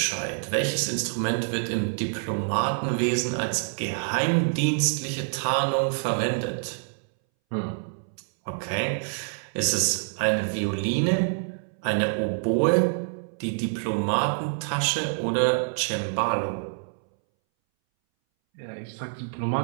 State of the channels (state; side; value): silent; left; 61 dB below the other